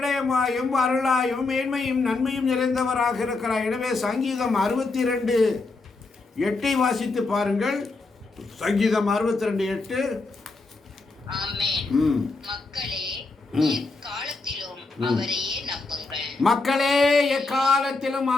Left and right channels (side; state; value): right; quieter; 3.6 dB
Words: அருளாயும் மேன்மையும் நன்மையும் நிறைந்தவராக இருக்கிறார். எனவே சங்கீதம் 62:8 வாசித்து பாருங்கள். சங்கீதம் 62:8. மக்களே எக்காலத்திலும் அவரையே நம்புங்கள். மக்களே எக்காலத்திலும்